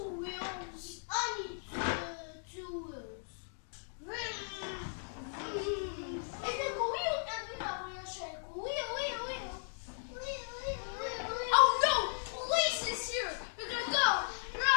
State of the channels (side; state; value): right; silent; digital silence